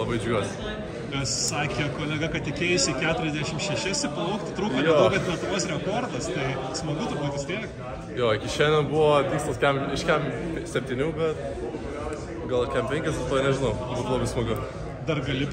džiugiuosi. Nes sakė kolega, kad tikėjusi 46 plaukti, trūko nedaug, bet Lietuvos rekordas, tai smagu turbūt vis tiek. Jo, iki šiandien buvo tikslas iš kem 7, bet gal kem 5, to nežinau, būtų labai smagu. Dar gali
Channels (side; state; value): both; identical; correlation 1.00